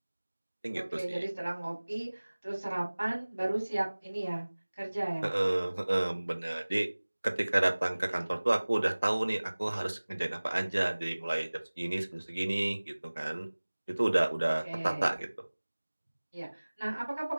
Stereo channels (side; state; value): both; inverted; correlation -1.00